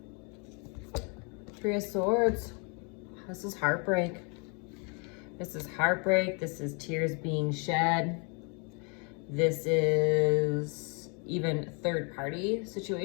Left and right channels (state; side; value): quieter; right; 35.1 dB